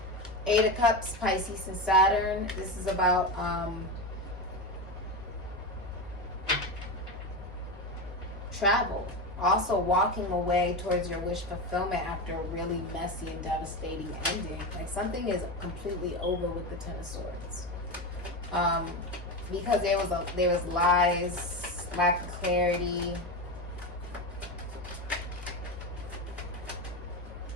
Eight of Cups, Pisces and Saturn. This is about travel. Also walking away towards your wish fulfillment after a really messy and devastating ending. Like something is completely over with the Ten of Swords. Because there was lies, lack of clarity.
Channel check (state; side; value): normal; both; correlation 0.18